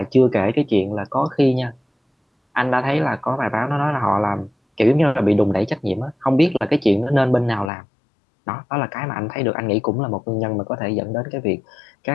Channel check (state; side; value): drops out; right; at 7.7 s